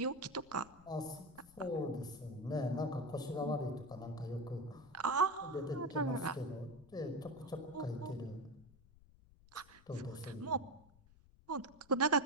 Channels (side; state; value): left; noise; rumble, 25 dB below the sound